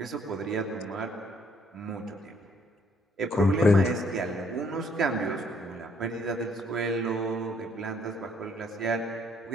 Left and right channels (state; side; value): normal; both; correlation 0.66